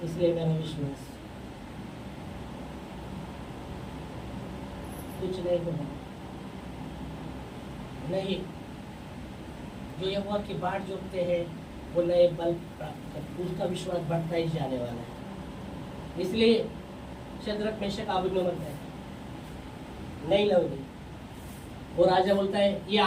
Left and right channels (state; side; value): identical; both; correlation 1.00